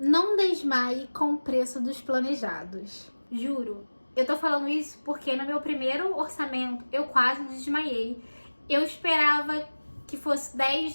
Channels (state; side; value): inverted; both; correlation -1.00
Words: desmaie com o preço dos planejados. Juro. Eu tô falando isso porque no meu primeiro orçamento eu quase desmaiei. Eu esperava que fosse 10,